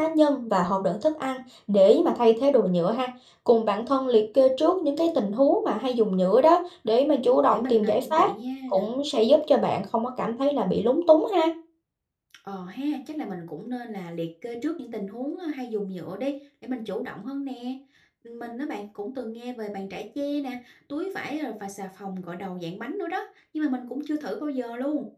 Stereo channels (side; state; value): both; identical; correlation 1.00